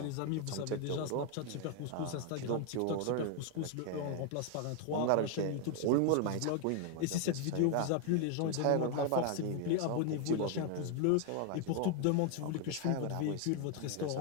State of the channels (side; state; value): both; different; correlation 0.01